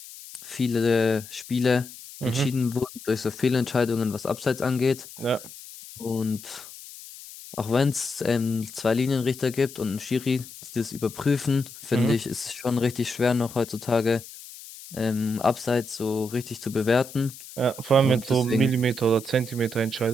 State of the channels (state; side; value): noise; left; hiss, 16 dB below the sound